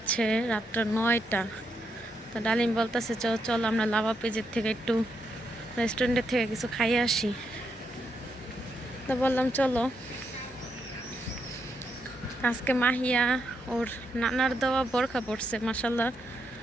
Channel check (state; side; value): normal; both; correlation 0.80